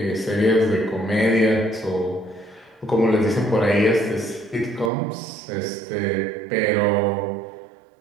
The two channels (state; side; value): drops out; left; at 4.9 s